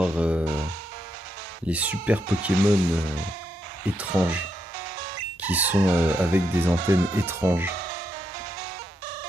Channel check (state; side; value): normal; both; correlation 0.80